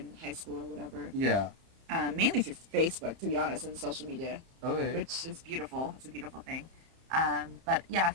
high school or whatever. Yeah. Mainly through Facebook, to be honest, and social media, Okay. which is beautiful. It's a beautiful thing. But yeah, a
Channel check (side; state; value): left; late; 30 ms